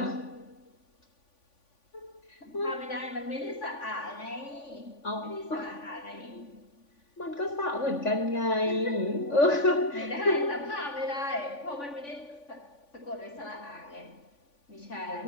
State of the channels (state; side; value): late; right; 3.5 ms